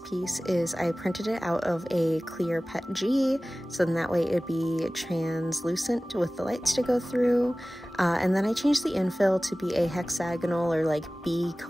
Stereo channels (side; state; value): both; normal; correlation 0.98